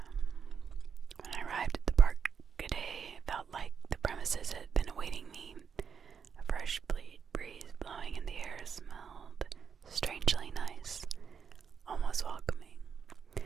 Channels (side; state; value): left; quieter; 6.7 dB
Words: When I arrived at the park today, it felt like the premises had been awaiting me. A fresh breeze blowing in the air smelled strangely nice, almost welcoming.